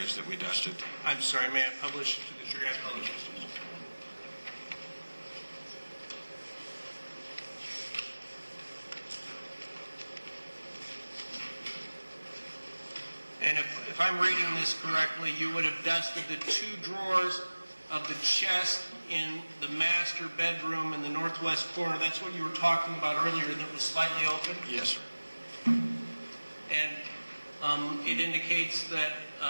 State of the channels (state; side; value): inverted; both; correlation -1.00